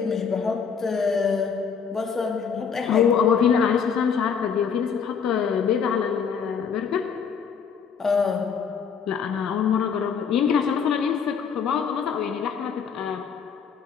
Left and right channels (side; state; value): right; quieter; 6.6 dB